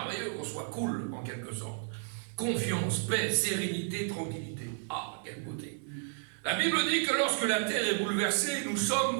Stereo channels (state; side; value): silent; left; digital silence